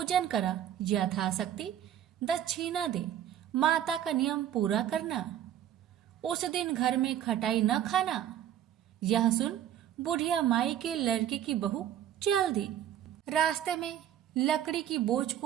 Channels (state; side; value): quieter; left; 10.9 dB